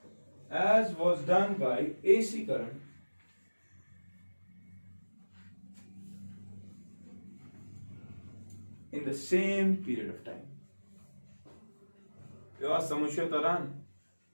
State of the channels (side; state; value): both; inverted; correlation -1.00